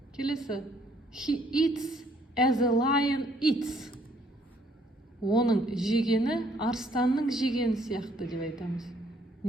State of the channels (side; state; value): both; normal; correlation 0.65